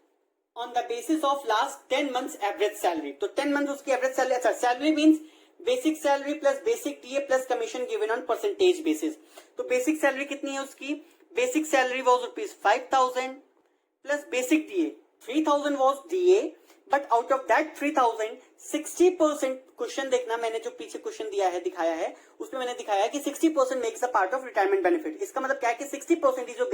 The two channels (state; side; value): identical; both; correlation 1.00